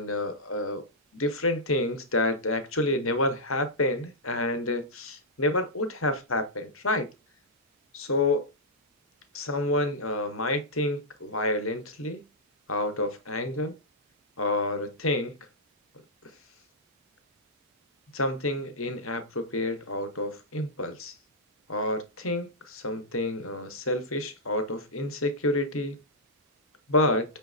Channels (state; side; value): normal; both; correlation -0.10